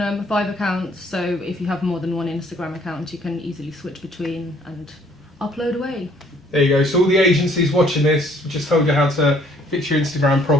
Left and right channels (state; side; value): normal; both; correlation 0.61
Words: 5 accounts. So if you have more than one Instagram account, you can easily switch between and upload away. There you go. So all the agencies watching this, we just told you how to fix your Instagram